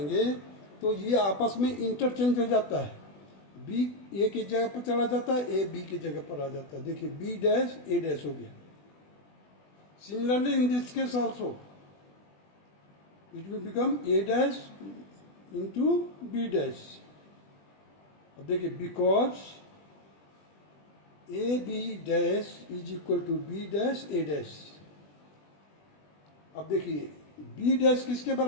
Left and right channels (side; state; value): right; late; 20 ms